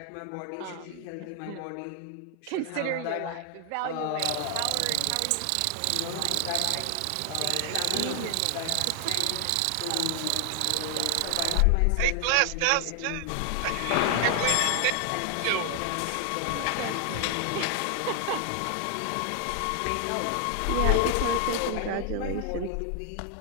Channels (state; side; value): different; both; correlation 0.00